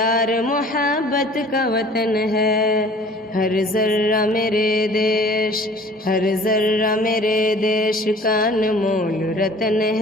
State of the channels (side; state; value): both; normal; correlation 0.49